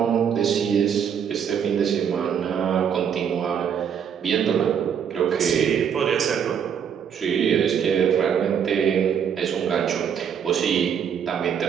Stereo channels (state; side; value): quieter; left; 7.9 dB